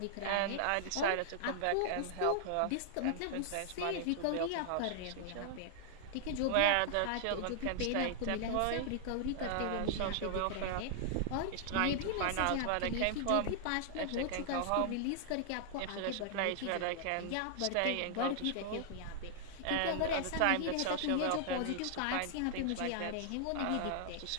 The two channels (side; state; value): both; different; correlation -0.01